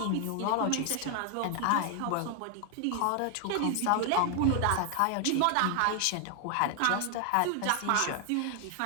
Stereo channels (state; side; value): different; both; correlation 0.00